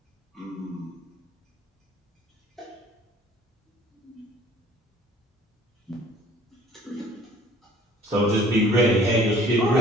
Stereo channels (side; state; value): both; normal; correlation 0.53